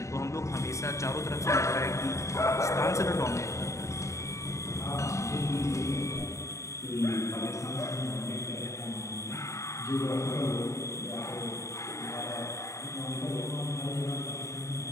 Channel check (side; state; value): right; late; 0.14 ms